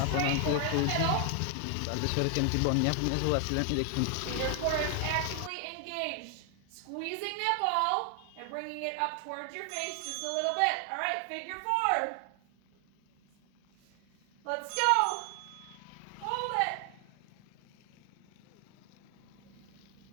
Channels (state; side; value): different; both; correlation 0.00